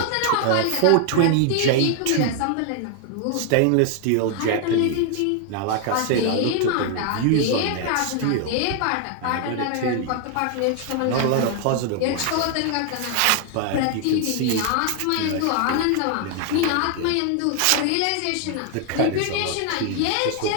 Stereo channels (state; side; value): different; both; correlation 0.00